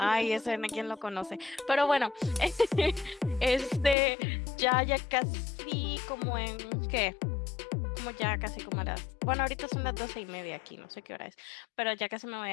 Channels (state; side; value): drops out; right; at 4.0 s